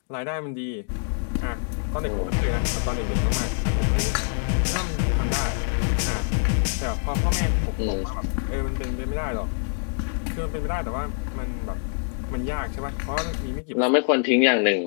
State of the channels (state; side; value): silent; right; digital silence